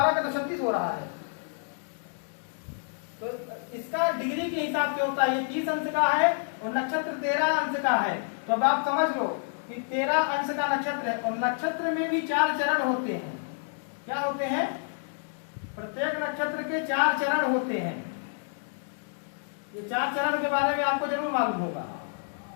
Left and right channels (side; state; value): right; silent; digital silence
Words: का तो 36 हो रहा है। तो इसका डिग्री के हिसाब से होता है। ये 30 अंश का है और नक्षत्र 13 अंश का है। तो अब आप समझ लो कि 13 अंश का नक्षत्र है, और नक्षत्र में भी 4 चरण होते हैं। क्या होते हैं? प्रत्येक नक्षत्र के 4 चरण होते हैं। ये 4 चरण के बारे में आपको जरूर मालूम होगा,